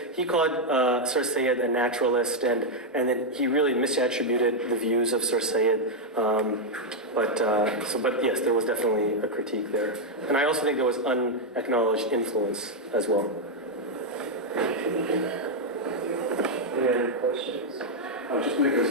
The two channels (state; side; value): normal; both; correlation 0.00